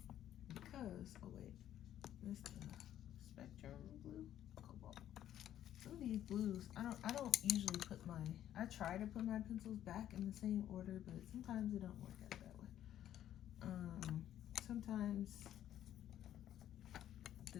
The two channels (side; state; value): right; quieter; 11.5 dB